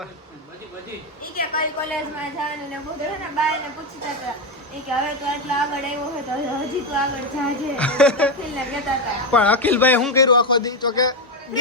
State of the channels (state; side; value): normal; both; correlation 0.09